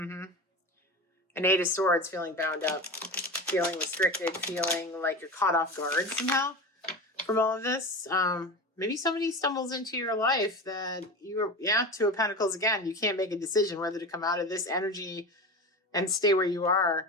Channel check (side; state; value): both; normal; correlation 0.27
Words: Eight of Swords, feeling bound up, feeling restricted, feeling like you're caught off guard somehow from all of this. Maybe somebody stumbles into your life that Two of Pentacles again. You can't make a decision whether to come out of this energy and stay where you are